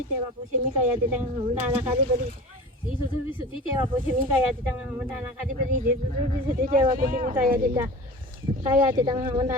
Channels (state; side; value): normal; both; correlation 0.36